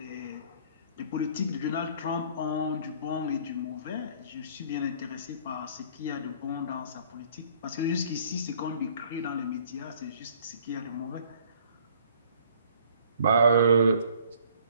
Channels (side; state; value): both; inverted; correlation -0.56